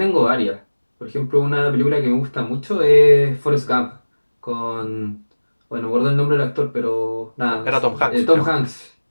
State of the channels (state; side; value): inverted; both; correlation -1.00